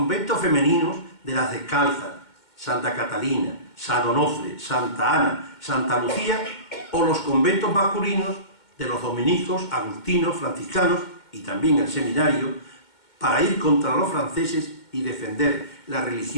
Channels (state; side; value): late; right; 2.2 ms